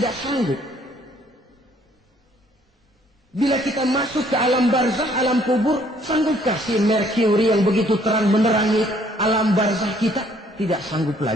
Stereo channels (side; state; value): both; normal; correlation 0.63